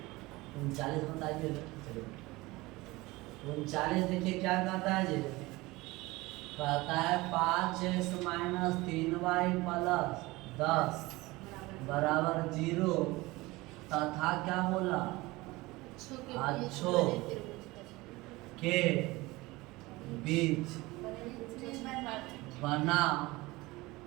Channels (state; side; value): quieter; left; 21.2 dB